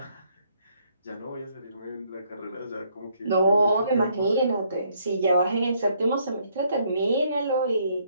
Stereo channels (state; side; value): inverted; both; correlation -0.69